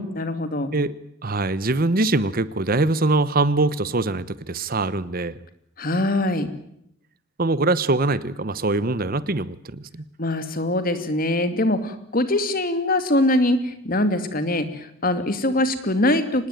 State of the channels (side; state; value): both; normal; correlation 0.38